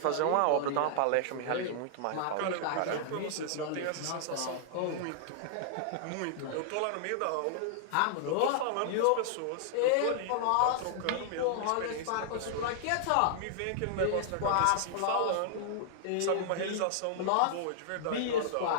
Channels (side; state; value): both; different; correlation -0.01